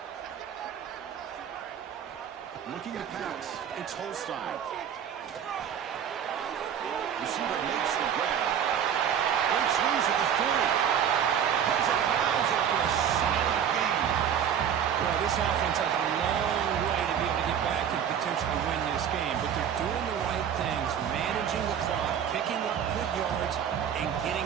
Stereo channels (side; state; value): left; quieter; 8.7 dB